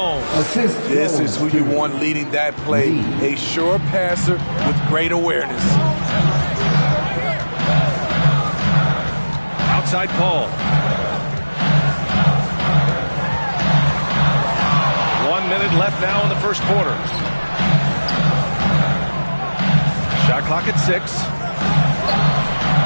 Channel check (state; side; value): inverted; both; correlation -1.00